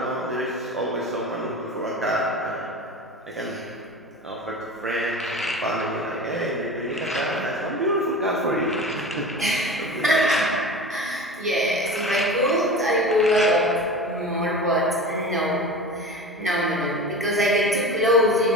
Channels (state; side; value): normal; both; correlation 0.33